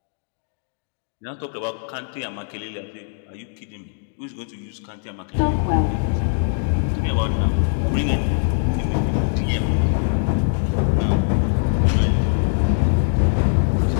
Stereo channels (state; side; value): silent; right; digital silence